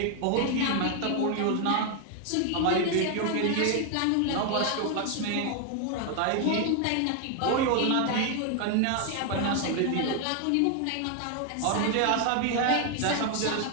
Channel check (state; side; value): different; both; correlation 0.00